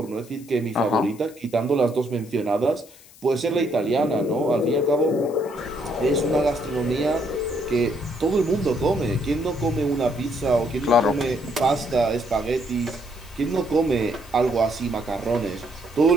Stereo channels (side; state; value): left; noise; hiss, 23 dB below the sound